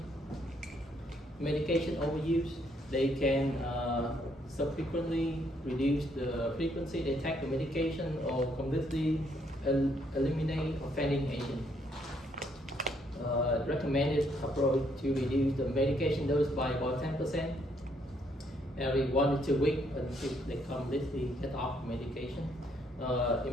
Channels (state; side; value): normal; both; correlation 0.70